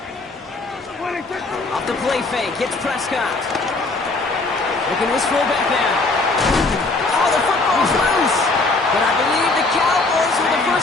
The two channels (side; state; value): right; quieter; 3.4 dB